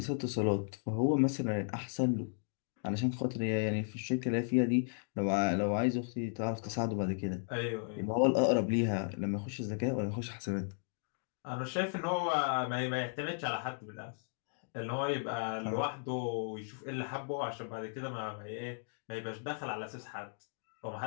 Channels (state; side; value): silent; right; digital silence